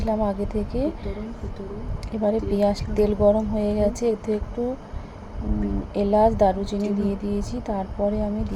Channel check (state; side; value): identical; both; correlation 1.00